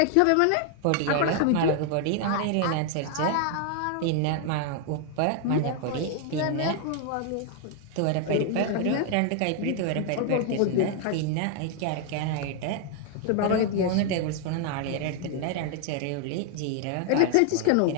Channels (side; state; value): both; different; correlation 0.00